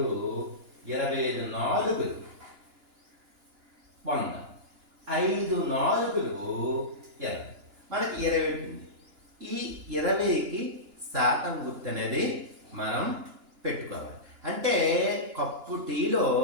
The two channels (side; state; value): left; late; 2.9 ms